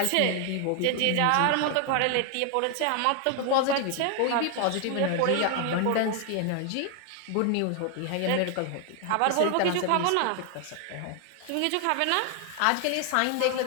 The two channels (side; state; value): both; different; correlation 0.00